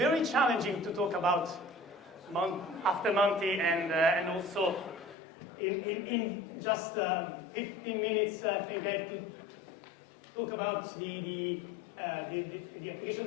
challenging to talk about after Monty and also in just 15 minutes. I think I have to talk about the application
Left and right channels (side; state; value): right; drops out; at 5.2 s